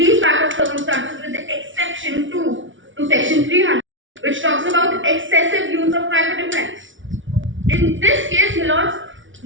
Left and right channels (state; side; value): late; left; 0.56 ms